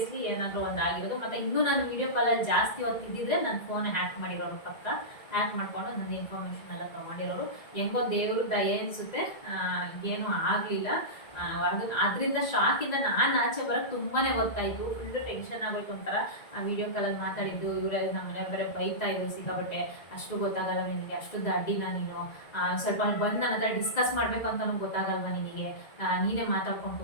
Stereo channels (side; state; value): right; late; 1.9 ms